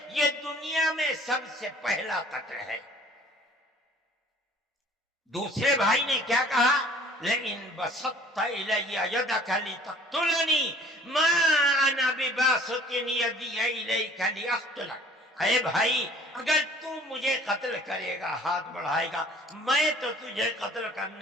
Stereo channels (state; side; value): normal; both; correlation 0.51